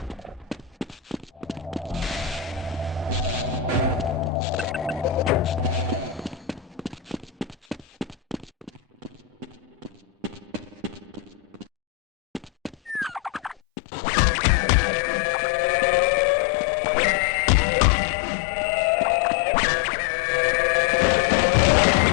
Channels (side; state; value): right; drops out; at 13.6 s